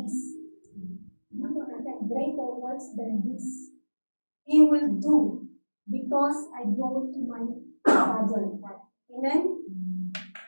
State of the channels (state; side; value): inverted; both; correlation -1.00